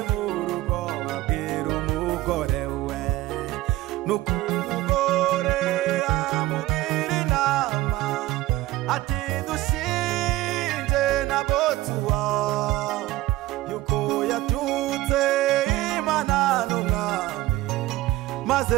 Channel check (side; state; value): left; quieter; 16.8 dB